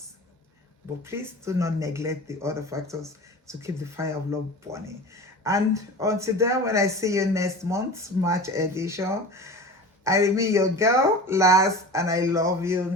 But please do not neglect the other factors to keep the fire of love burning. And until then, when I see you next month, March edition, I remain your girl, LARS, and I love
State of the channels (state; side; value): normal; both; correlation 0.35